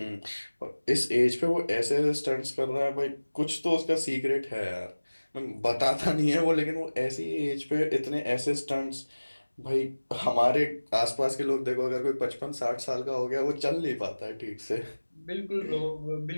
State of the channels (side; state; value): both; inverted; correlation -1.00